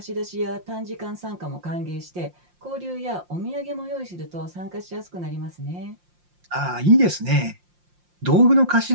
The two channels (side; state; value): left; late; 5.7 ms